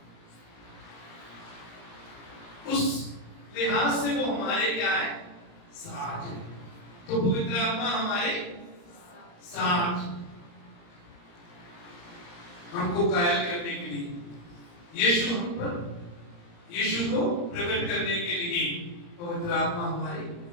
उस लिहाज से वो हमारे क्या है? साथ है। तो पवित्र आत्मा हमारे साथ, हमको कायल करने के लिए, यीशु हम पर, यीशु को प्रकट करने के लिए पवित्र आत्मा हमारे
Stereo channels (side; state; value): right; late; 34 ms